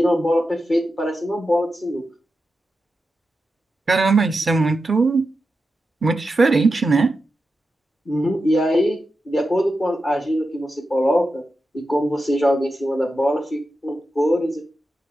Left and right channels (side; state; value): both; normal; correlation 0.90